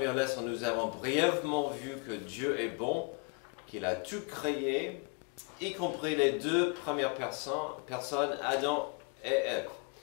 leçon, nous avons brièvement vu que Dieu est bon, qu'il a tout créé, y compris les 2 premières personnes, Adam et Ève.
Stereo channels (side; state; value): right; quieter; 32.5 dB